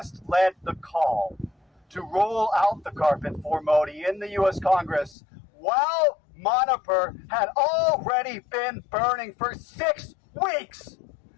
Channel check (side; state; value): right; drops out; at 5.2 s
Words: led the call to roll out the carpet for Modi in the U.S. Congress, while Manipur had already been burning for 6 weeks,